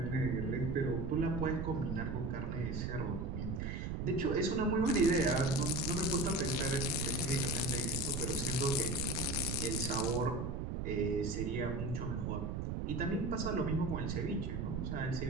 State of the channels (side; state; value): right; noise; rumble, 2 dB below the sound